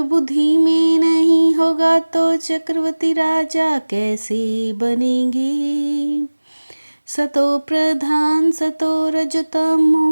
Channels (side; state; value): both; inverted; correlation -1.00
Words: बुद्धि में नहीं होगा तो चक्रवर्ती राजा कैसे बनेंगे। सतो प्रधान सतो